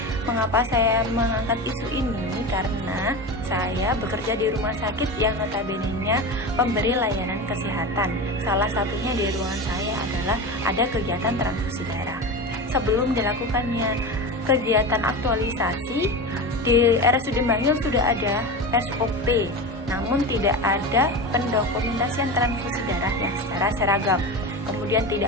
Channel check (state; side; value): normal; both; correlation 0.25